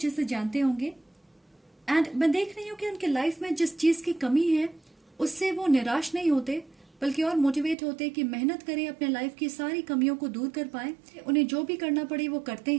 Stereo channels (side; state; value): left; drops out; at 7.8 s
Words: से जानते होंगे। एंड मैं देख रही हूँ कि उनके लाइफ में जिस चीज की कमी है उससे वो निराश नहीं होते, बल्कि और मोटिवेट होते कि मेहनत करें, अपने लाइफ की सारी कमियों को दूर कर पाए। उन्हें जो भी करना पड़े वो करते